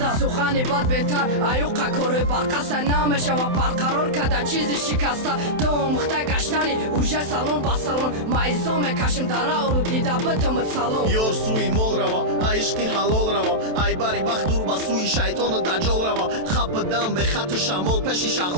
سخنی بد بهتر ایوقا کوره برقصه نمیشه و برقرار کده چیزی شکسته تو مخته گشتنی وژه سالون با سالون ما ایزام کشم داره رو دیده بتمت سالون یور سوی مول روا عشقی حلال روا ای باری بخدور با سوی شیطان دجال روا خپ دم به خط شمال پشی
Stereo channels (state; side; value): late; left; 27 ms